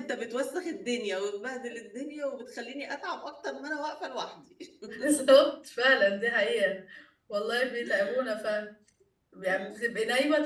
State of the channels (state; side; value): identical; both; correlation 1.00